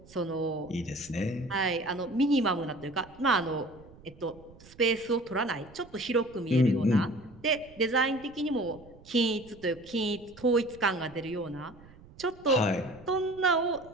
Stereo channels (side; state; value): right; noise; rumble, 22 dB below the sound